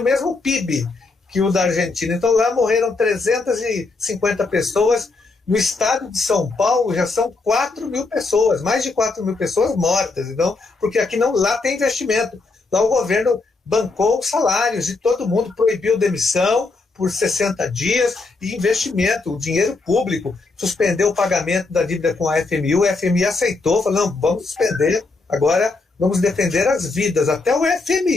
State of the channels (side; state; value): right; quieter; 3.7 dB